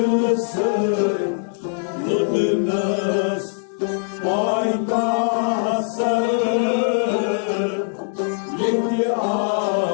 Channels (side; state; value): right; silent; digital silence